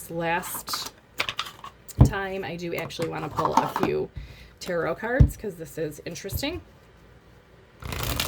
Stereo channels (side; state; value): both; identical; correlation 1.00